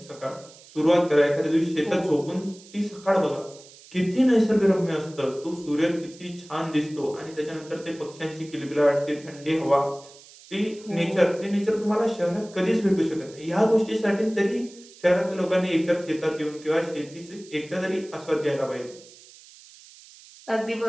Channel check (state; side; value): noise; right; hiss, 22 dB below the sound